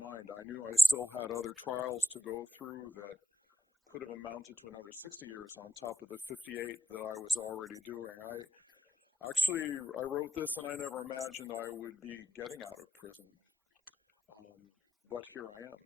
I knew I still had other trials to go through that could have amounted to another 60 years on top of the 58 that I was already doing. I wrote this and I never imagined I would be getting out of prison. Um, but here I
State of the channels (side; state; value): both; normal; correlation 0.81